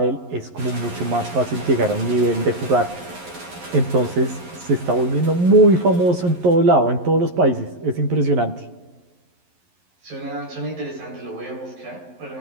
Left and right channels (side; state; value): left; late; 11 ms